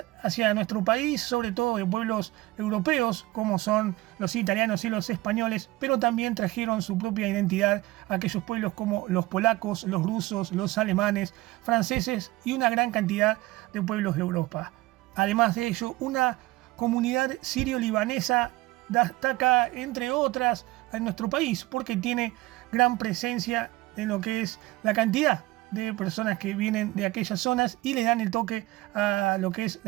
hacia nuestro país, sobre todo de pueblos europeos, como son los italianos y los españoles, pero también trajeron su propia identidad a aquellos pueblos como los polacos, los rusos, los alemanes, franceses y una gran cantidad de pueblos de Europa. Además de ello, una comunidad sirio-libanesa destaca, entre otras, en nuestro país, porque tiene gran presencia en lo que es la cantidad de personas que vienen de aquellas zonas y le dan el toque a lo que es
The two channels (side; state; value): left; quieter; 19.4 dB